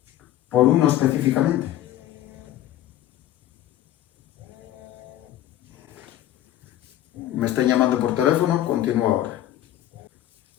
por uno específicamente. Me están llamando por teléfono, continúo ahora.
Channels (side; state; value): right; quieter; 13.0 dB